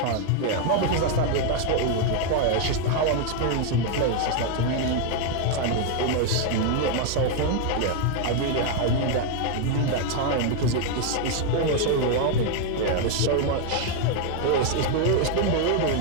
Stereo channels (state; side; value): different; both; correlation 0.01